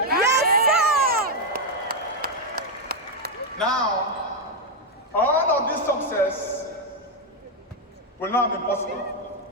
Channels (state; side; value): normal; both; correlation 0.01